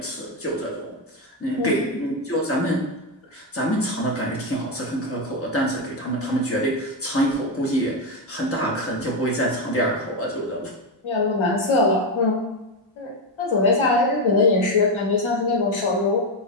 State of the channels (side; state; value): both; normal; correlation 0.07